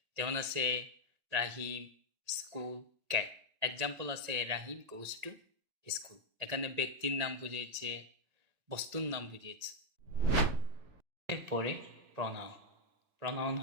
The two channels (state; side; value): late; left; 1.8 ms